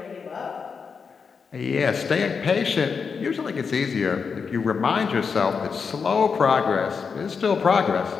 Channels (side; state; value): right; quieter; 5.7 dB